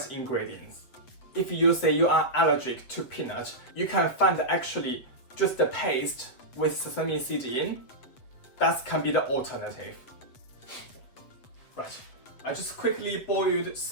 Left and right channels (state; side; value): late; right; 8.1 ms